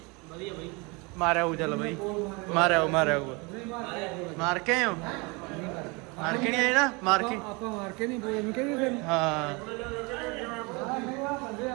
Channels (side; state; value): left; quieter; 28.0 dB